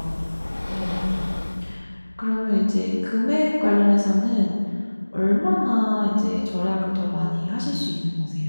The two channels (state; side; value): inverted; both; correlation -1.00